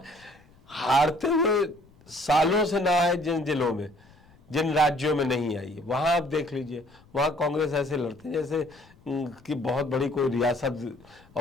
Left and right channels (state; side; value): noise; left; rumble, 28 dB below the sound